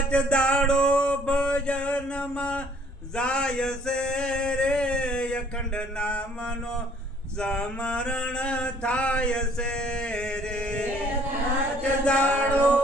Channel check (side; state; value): both; normal; correlation 0.60